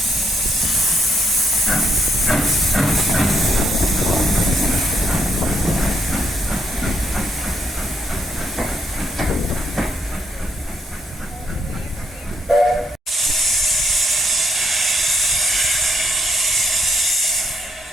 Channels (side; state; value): both; normal; correlation 0.74